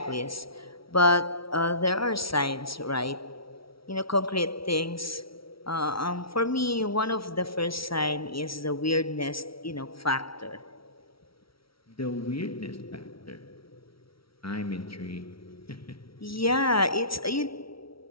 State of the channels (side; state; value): right; late; 0.75 ms